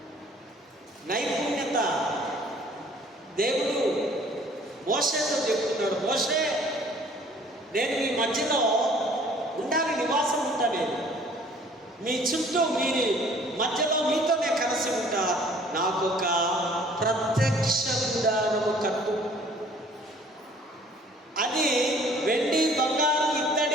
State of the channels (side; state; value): both; normal; correlation 0.55